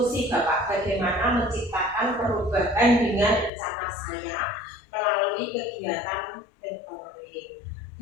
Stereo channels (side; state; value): right; drops out; at 3.5 s